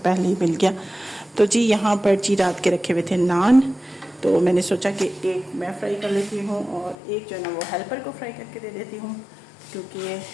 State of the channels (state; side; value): drops out; right; at 7.0 s